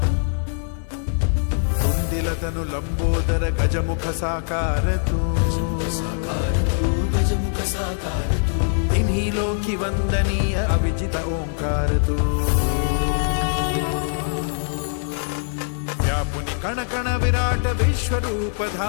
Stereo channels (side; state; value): right; silent; digital silence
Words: తుందిలతను లంబోదర గజముఖ సాకారతూ तिन्हिलों वंदनीय अविजित ओंकार तू व्यापुनि कण कण विराट विश्वरूप